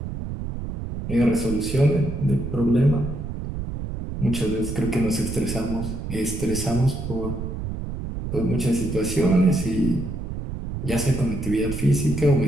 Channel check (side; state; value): right; noise; rumble, 6 dB below the sound